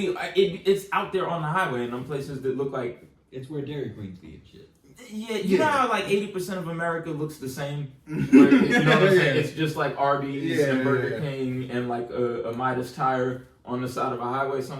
it's out there on the highway in them places that look like it's where Dairy Queens be and shit. Yeah, you know how like 80% of America looks the same. Where, you know what I'm saying? It's just like Arby's and Burger King and like a Midas tire on the side of a highway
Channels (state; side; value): identical; both; correlation 1.00